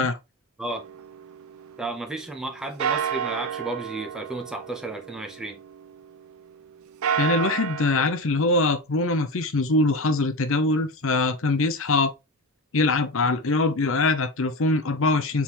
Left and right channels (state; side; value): normal; both; correlation 0.22